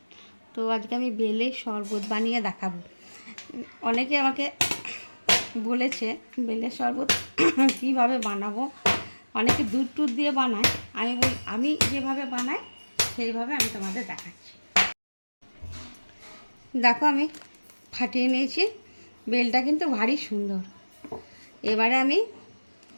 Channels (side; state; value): both; inverted; correlation -1.00